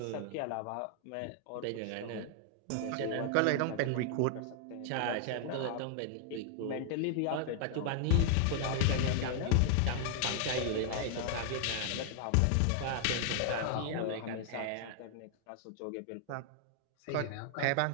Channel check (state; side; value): different; both; correlation 0.00